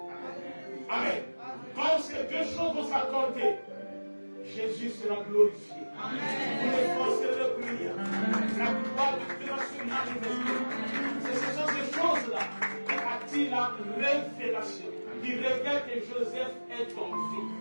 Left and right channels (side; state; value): both; inverted; correlation -1.00